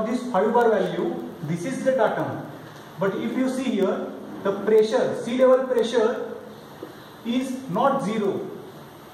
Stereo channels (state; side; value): identical; both; correlation 1.00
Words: this 5 bar value, this is the datum. But if you see here, the pressure, sea level pressure is not 0.